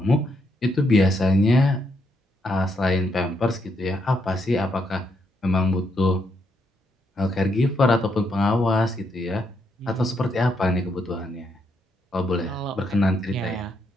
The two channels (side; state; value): both; normal; correlation 0.77